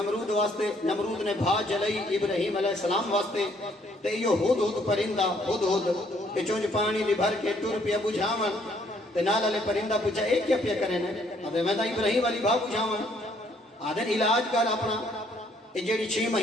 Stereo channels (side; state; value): both; normal; correlation 0.66